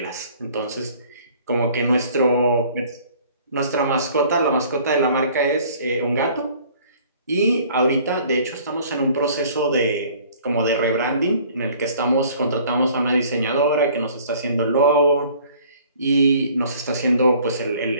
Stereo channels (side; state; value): both; inverted; correlation -0.54